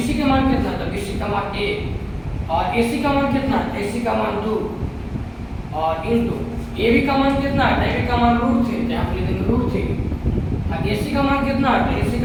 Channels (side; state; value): both; identical; correlation 1.00